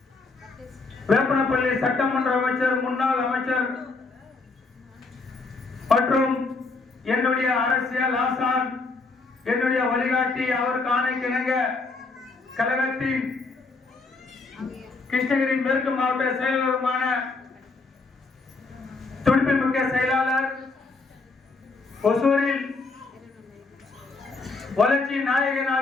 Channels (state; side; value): quieter; right; 3.8 dB